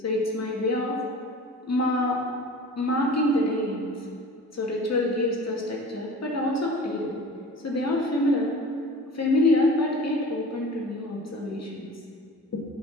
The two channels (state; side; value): normal; both; correlation 0.40